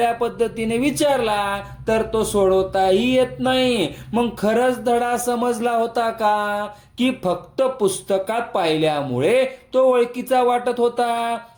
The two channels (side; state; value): both; identical; correlation 1.00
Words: पद्धतीने विचारला तर तो सोडवताही येत नाही. मग खरंच धडा समजला होता का, की फक्त पुस्तकात पाहिल्यामुळे तो ओळखीचा वाटत होता?